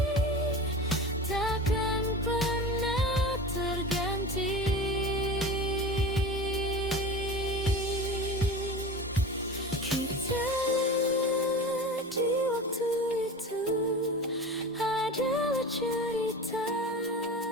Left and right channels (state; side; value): normal; both; correlation 0.32